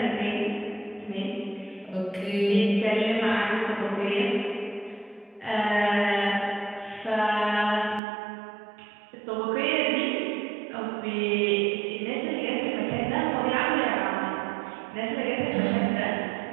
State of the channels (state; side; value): drops out; left; at 8.0 s